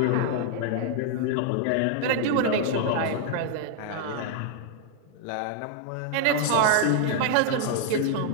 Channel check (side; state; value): both; different; correlation 0.00